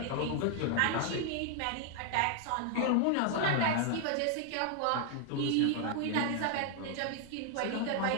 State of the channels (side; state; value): both; different; correlation 0.00